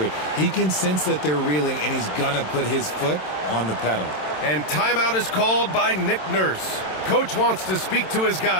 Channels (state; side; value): late; right; 27 ms